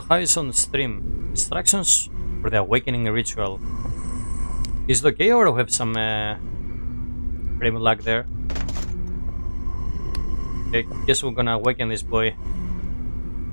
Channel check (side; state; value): both; inverted; correlation -1.00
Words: how is on stream? Instructions for the awakening ritual. Is it okay or do we have some frame lag there? Okay, guess we're gonna awaken this boy.